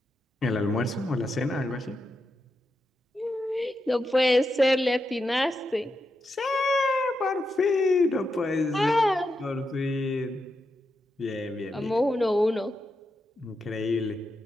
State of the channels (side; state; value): both; normal; correlation 0.86